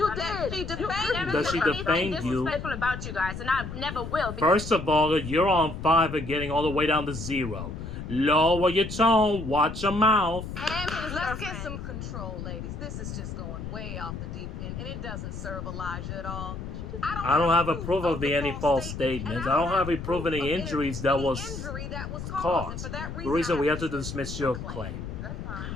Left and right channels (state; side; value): noise; left; rumble, 8 dB below the sound